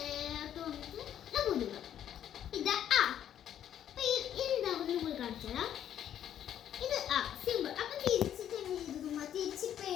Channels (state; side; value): quieter; right; 10.3 dB